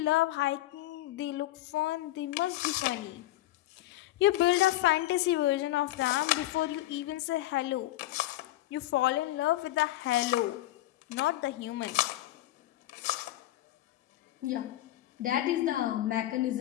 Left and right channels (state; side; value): quieter; right; 15.5 dB